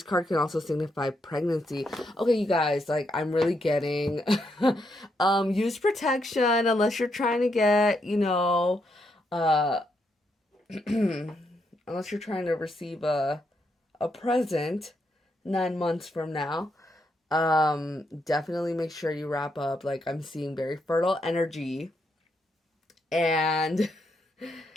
card can also signify pregnancy. Okay, you guys, like, I'm really getting use protection unless you're trying to get, unless you're trying to receive a present 9 months from now. Definitely make sure you wrap up. Like, I'm seeing very fertile energy. And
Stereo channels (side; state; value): both; normal; correlation 0.79